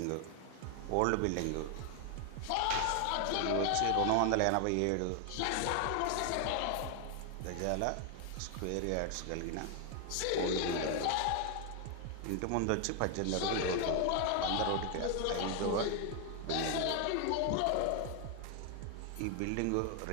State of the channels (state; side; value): different; both; correlation 0.00